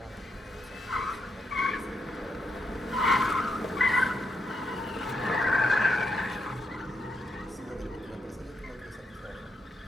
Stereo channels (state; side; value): normal; both; correlation 0.81